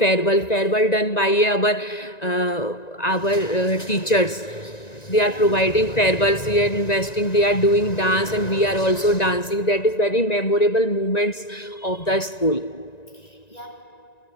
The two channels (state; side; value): late; right; 1.9 ms